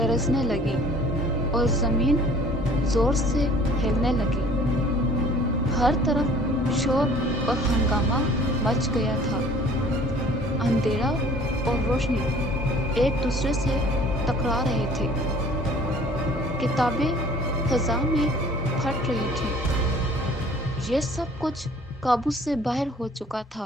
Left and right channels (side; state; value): both; normal; correlation 0.51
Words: लगी और जमीन जोर से हिलने लगी। हर तरफ शोर और हंगामा मच गया था। अंधेरा और रोशनी एक दूसरे से टकरा रहे थे। किताबें फजा में फट रही थी। ये सब कुछ काबू से बाहर हो चुका